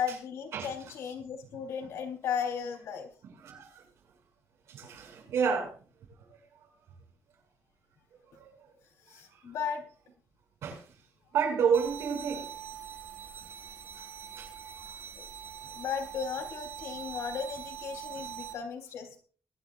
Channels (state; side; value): normal; both; correlation 0.56